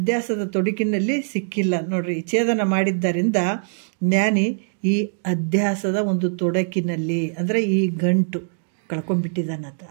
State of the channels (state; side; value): silent; left; digital silence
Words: ತೊಡಕಿನಲ್ಲಿ ಸಿಕ್ಕಿಲ್ಲ ನೋಡ್ರಿ. ಛೇದನ ಮಾಡಿದ್ದರಿಂದ ಜ್ಞಾನಿ ಈ ಅಧ್ಯಾಸದ ಒಂದು ತೊಡಕಿನಲ್ಲಿ, ಅಂದರೆ ಈ ಗಂಟು ಕಳ್ಕೊಂಡ್ಬಿಟ್ಟಿದ್ದಾನಂತ,